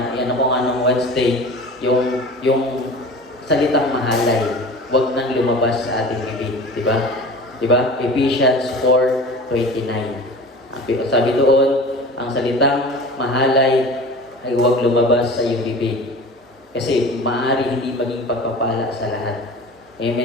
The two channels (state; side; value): normal; both; correlation 0.37